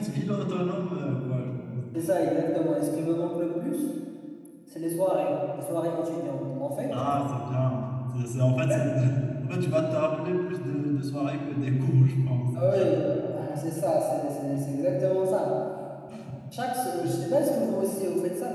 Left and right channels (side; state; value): both; identical; correlation 1.00